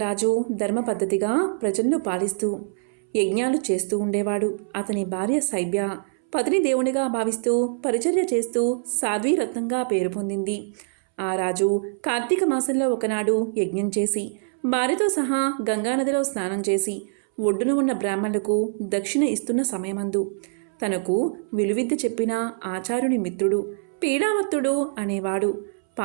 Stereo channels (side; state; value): left; silent; 62 dB below the other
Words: రాజు ధర్మ పద్ధతిగా ప్రజలను పాలిస్తూ యజ్ఞాలు చేస్తూ ఉండేవాడు. అతని భార్య శైబ్య పతిని దేవునిగా భావిస్తూ పరిచర్య చేస్తూ సాధ్వీరత్నంగా పేరు పొందింది. ఆ రాజు కార్తీక మాసంలో ఒకనాడు యజ్ఞం చేసి భార్యతో సహా గంగానదిలో స్నానం చేసి ఒడ్డున ఉన్న బ్రాహ్మణులకు దక్షిణ ఇస్తున్న సమయమందు తనకు విలువిద్య చెప్పిన ఆచార్యుని మిత్రుడు పీడావత్తుడు అనేవాడు